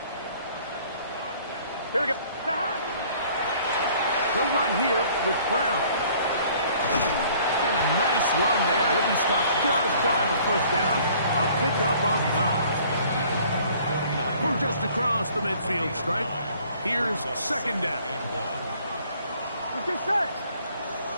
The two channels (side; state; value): both; inverted; correlation -0.56